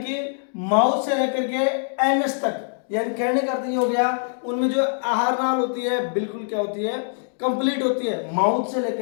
माउथ से लेकर के एनस तक, यानी कहने का अर्थ ये हो गया उनमें जो आहार नाल होती है बिल्कुल क्या होती है कंप्लीट होती है, माउथ से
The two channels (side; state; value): right; silent; digital silence